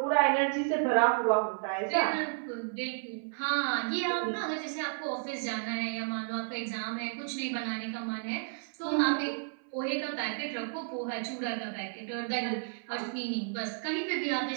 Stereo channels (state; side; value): silent; left; 56 dB below the other